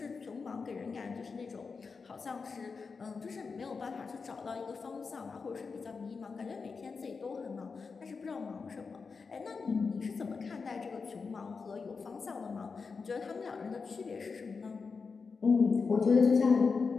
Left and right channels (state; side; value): quieter; right; 4.9 dB